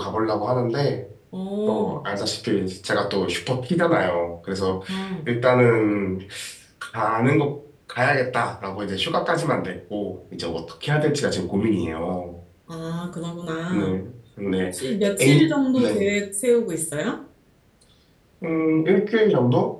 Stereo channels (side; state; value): both; identical; correlation 1.00